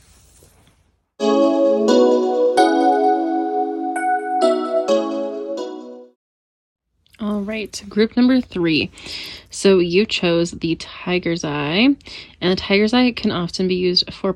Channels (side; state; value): both; identical; correlation 1.00